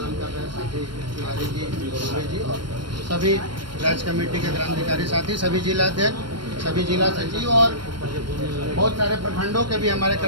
कर रहे हैं साथी तिवारी जी, दुबे जी और सभी राज्य कमेटी के क्रांतिकारी साथी, सभी जिलाध्यक्ष, सभी जिला सचिव और बहुत सारे प्रखंडों के भी हमारे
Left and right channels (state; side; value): late; left; 0.72 ms